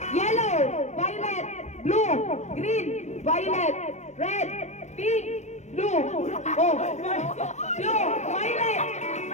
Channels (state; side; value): late; right; 0.33 ms